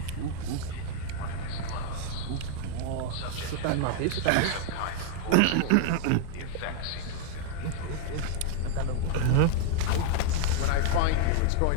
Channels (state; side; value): different; both; correlation 0.00